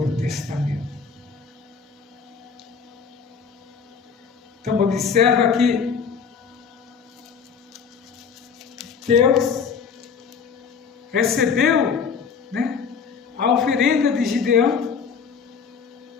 Testamento. Então observa que Deus recebeu, né, a oferenda de Gideão.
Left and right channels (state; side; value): quieter; right; 6.2 dB